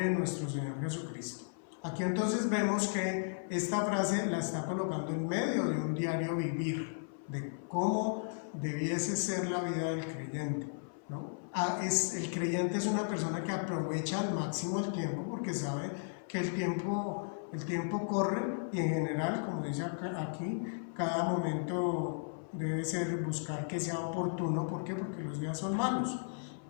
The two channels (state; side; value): silent; right; 54 dB below the other